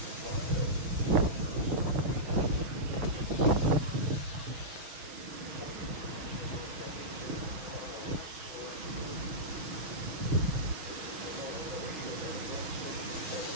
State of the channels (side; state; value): left; late; 6.2 ms